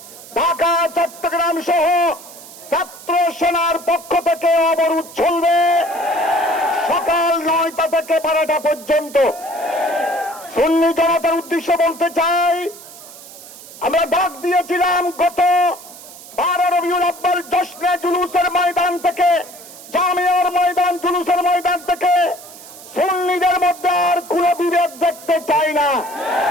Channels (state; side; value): noise; right; hiss, 17 dB below the sound